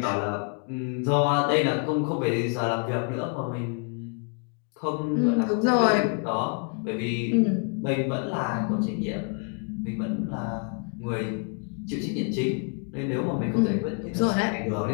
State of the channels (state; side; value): quieter; right; 38.6 dB